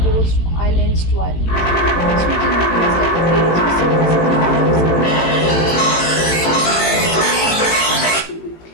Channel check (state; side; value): late; right; 18 ms